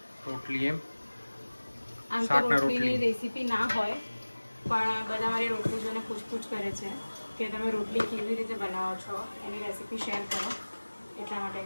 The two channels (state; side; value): inverted; both; correlation -1.00